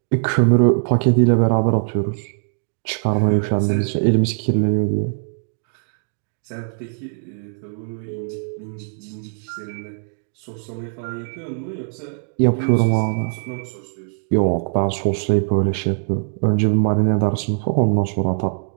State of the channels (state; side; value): silent; left; digital silence